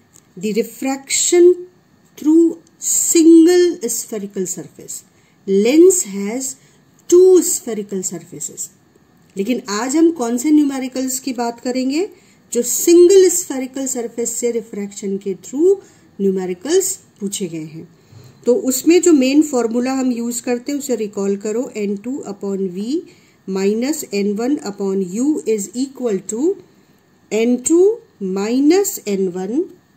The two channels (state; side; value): identical; both; correlation 1.00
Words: the refraction through single spherical surface. Lens has two spherical surfaces. लेकिन आज हम कौन से numericals की बात करेंगे? जो single spherical surface से रिफ्रैक्शन के थ्रू न्यूमेरिकल्स पूछे गए हैं. तो उसमें जो मेन फॉर्मूला हम यूज करते हैं उसे रिकॉल करो. n2 upon v minus n1 upon u is equal to n2 minus n1